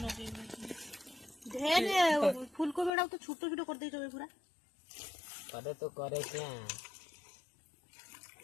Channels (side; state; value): right; drops out; at 2.9 s